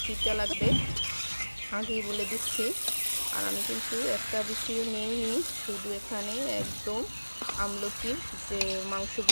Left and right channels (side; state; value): both; inverted; correlation -1.00